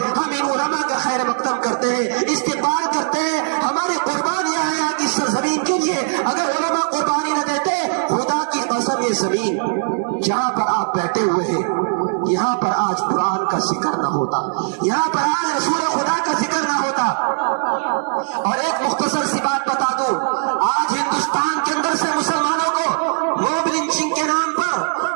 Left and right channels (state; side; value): silent; left; 61 dB below the other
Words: ہم ان علماء کا خیر مقدم کرتے ہیں, استقبال کرتے ہیں. ہماری قربانیاں ہیں آج اس سرزمین کے لیے. اگر علماء قربانی نہ دیتے, خدا کی قسم یہ زمین جہاں پر آپ بیٹھے ہوئے ہیں یہاں پر آج قرآن کا ذکر نہ ہوتا, یہاں پر آج رسول خدا کا ذکر نہ ہوتا. اور ایک مختصر سی بات بتا دوں, آج ہندوستان کے اندر سے مسلمانوں کو موب لنچنگ کے نام پر,